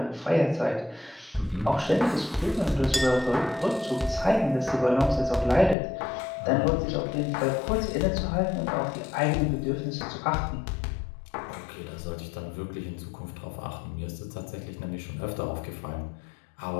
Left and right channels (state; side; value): drops out; right; at 5.8 s